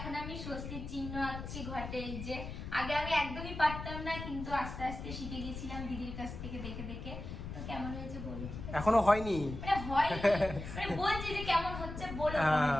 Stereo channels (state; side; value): noise; left; rumble, 8 dB below the sound